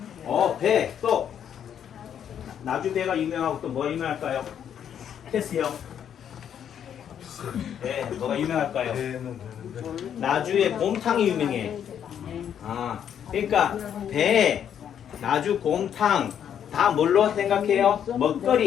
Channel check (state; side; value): quieter; right; 9.0 dB